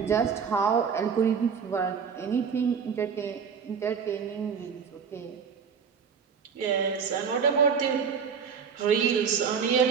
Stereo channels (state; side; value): quieter; left; 6.5 dB